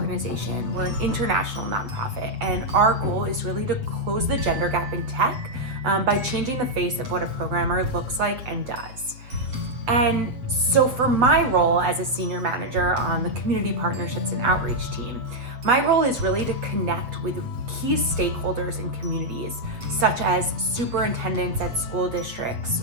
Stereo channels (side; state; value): left; late; 7.9 ms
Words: We're an international nonprofit, and our goal is really to close the gender gap in tech by changing the face of what a programmer looks like and does. And so for my role as a senior manager on the Community Partnerships and Outreach team, my role is really to connect with key stakeholders in communities, such as superintendents at school districts